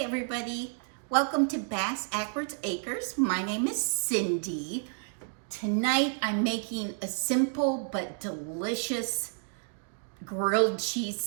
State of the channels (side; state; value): left; silent; 58 dB below the other